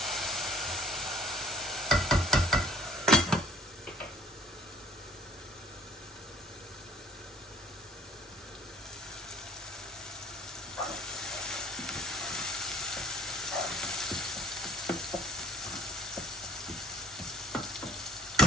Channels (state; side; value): normal; both; correlation 0.57